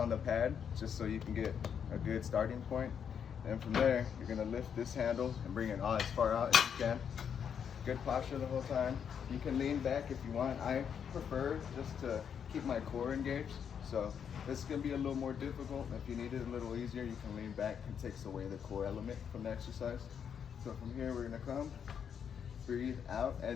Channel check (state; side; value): quieter; right; 7.7 dB